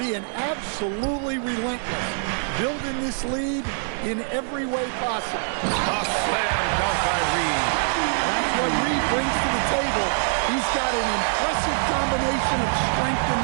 absolutely relentless, building this lead in every way possible. A slam dunk by Reed. That's what Reed brings to the table. He's got an impressive combination of strength and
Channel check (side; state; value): left; silent; 62 dB below the other